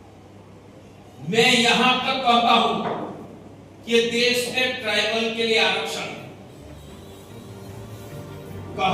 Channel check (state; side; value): identical; both; correlation 1.00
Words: मैं यहां तक कहता हूं कि देश में ट्राइबल के लिए आरक्षण